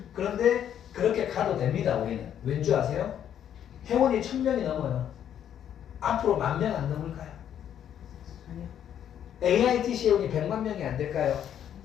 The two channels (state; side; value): quieter; right; 9.7 dB